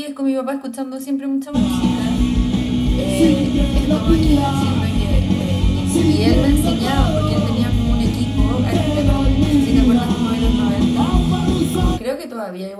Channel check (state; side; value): identical; both; correlation 1.00